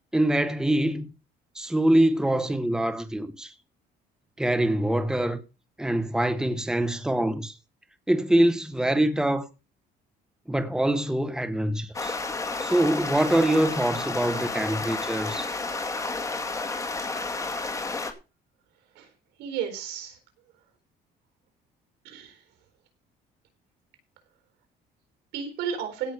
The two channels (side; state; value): both; normal; correlation 0.88